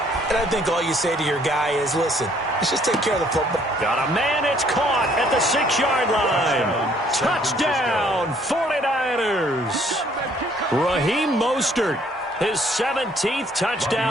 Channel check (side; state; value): both; normal; correlation 0.63